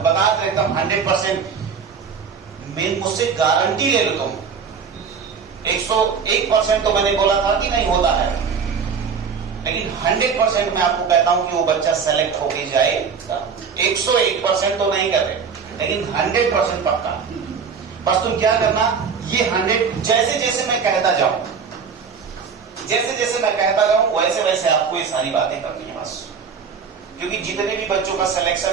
बता एकदम 100%, मुझसे गारंटी ले लो तुम, 101% तो मैंने बोला था कि नहीं होता है, लेकिन 100% मैं आपको कहता हूं कि वो बच्चा सेलेक्ट होके जाएगा। 101% तो नहीं कर रहे, लेकिन 100% पक्का। बस तुम क्या करना, ये 100 जैसे जैसे मैं कहता जाऊं, वैसे वैसे आपको ये सारी बातें करनी है बस। क्योंकि जितने भी बच्चों का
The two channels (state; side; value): quieter; left; 6.1 dB